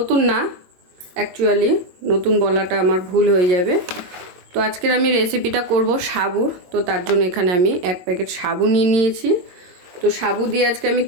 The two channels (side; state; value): left; late; 22 ms